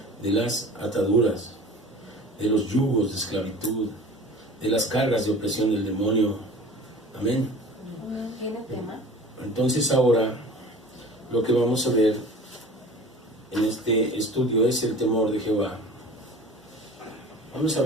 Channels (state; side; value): normal; both; correlation 0.41